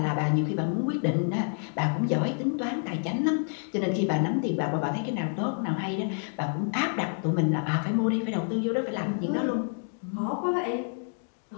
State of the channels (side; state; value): right; silent; 59 dB below the other